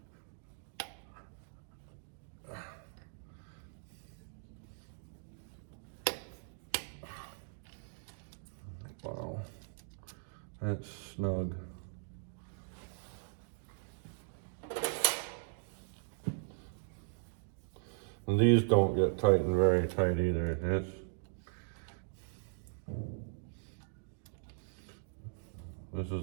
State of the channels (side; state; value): left; silent; digital silence